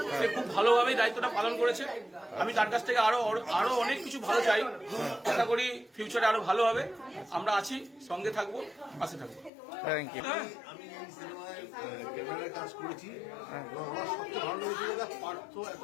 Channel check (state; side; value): drops out; right; at 9.5 s